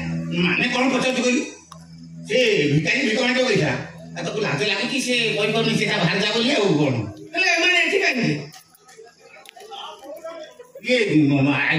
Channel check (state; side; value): identical; both; correlation 1.00